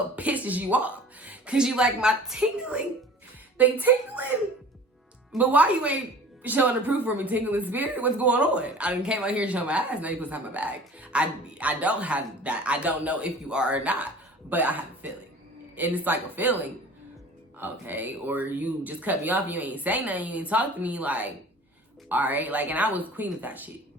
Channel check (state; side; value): normal; both; correlation 0.44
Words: pisses you off, because you like, my tingling, they tingling, but why you ain't showing the proof for me, tingling spirit? What's going on? I done came out here and showed my ass, now you put something back. I don't have that. I don't know if you are or not, but I have a feeling. And it's like a feeling, okay? Or you just cut me off, you ain't say nothing, you ain't talk to me, like, all right, like, and I was queen of that shit.